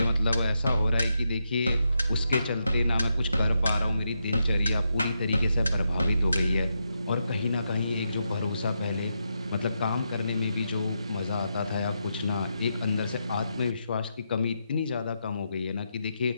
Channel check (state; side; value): inverted; both; correlation -0.83